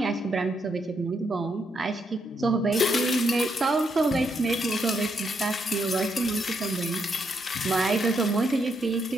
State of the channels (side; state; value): both; normal; correlation 0.78